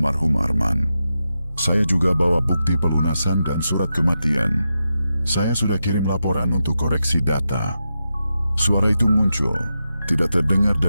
Arman. Saya juga bawa bukti pelunasan dan surat kematian. Saya sudah kirim laporan untuk koreksi data. Suara itu muncul, tidak terdengar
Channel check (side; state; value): both; inverted; correlation -0.89